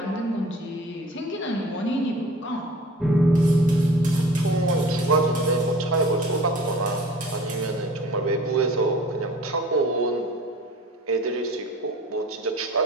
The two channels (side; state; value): both; normal; correlation 0.44